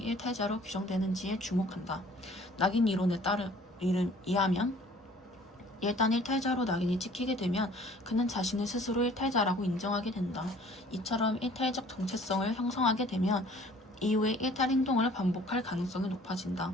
규정되는지에 주목한다. 낙인 이론에 의하면 일단 일탈자로 낙인이 찍히게 되면 그는 자신을 스스로 일탈자라고 인정하게 된다. 이처럼 일탈적 정체성을 형성하게 되면 이후에 일탈 행동을 반복할 가능성이 높아진다.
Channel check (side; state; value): both; normal; correlation 0.53